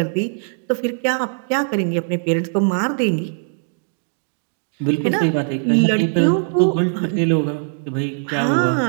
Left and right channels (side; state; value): left; silent; digital silence